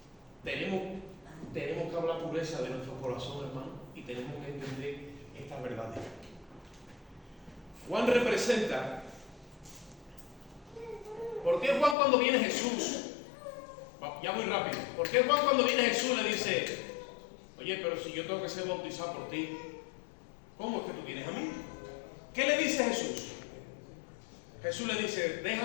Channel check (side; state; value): right; drops out; at 12.0 s